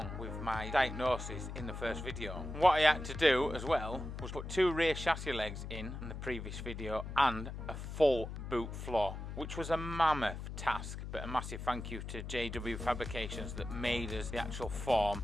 with my diagnosis in the first video. What I had to do as well was put 2 rear chassis legs in the previous video and a full boot floor, which was a mammoth task, but a massive thank you to JW Fabrications that made us the actual form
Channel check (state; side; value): noise; left; hum, 7 dB below the sound